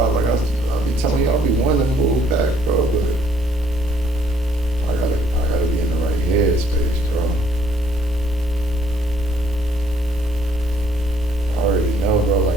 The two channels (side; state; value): both; normal; correlation 0.65